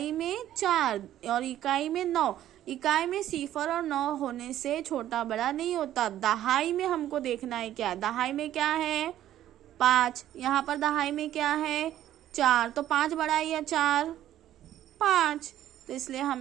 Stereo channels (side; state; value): left; quieter; 12.4 dB